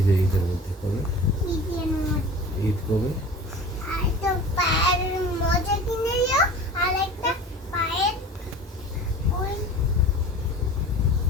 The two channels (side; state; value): both; normal; correlation 0.39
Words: যে ঈদের মধ্যে কবে? ঈদের মধ্যে ঈদ কবে? আর তো পায়ের মোজা কিনে দিও আর একটা পায়ের ওই